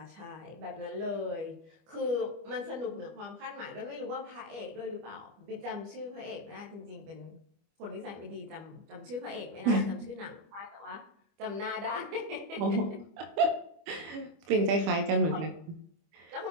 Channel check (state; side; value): late; left; 25 ms